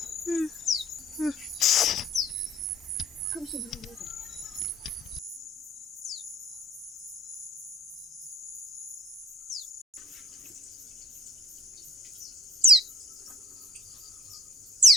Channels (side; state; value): both; normal; correlation 0.54